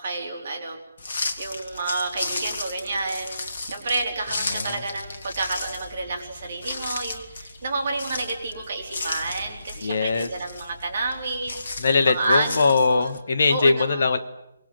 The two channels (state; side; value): inverted; both; correlation -0.82